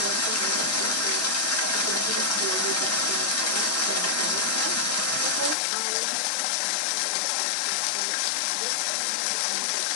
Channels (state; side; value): drops out; right; at 5.6 s